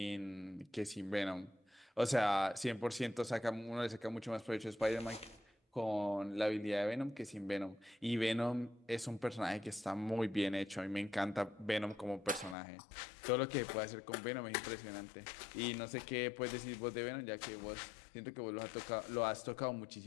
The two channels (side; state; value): right; drops out; at 12.6 s